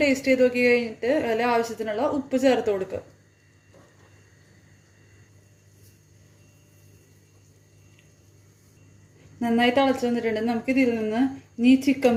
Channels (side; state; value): both; identical; correlation 1.00